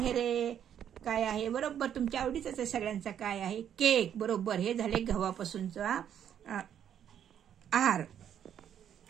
रे? काय आहे? बरोबर तुमच्या आवडीचाच आहे सगळ्यांचा. काय आहे? केक. बरोबर. हे झाले गव्हापासूनचा आहार.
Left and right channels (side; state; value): left; quieter; 9.4 dB